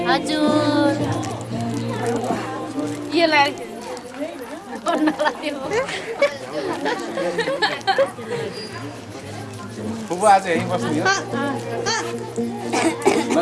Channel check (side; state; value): both; identical; correlation 1.00